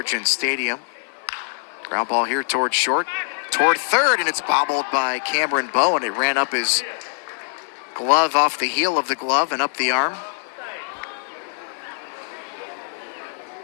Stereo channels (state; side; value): silent; right; 64 dB below the other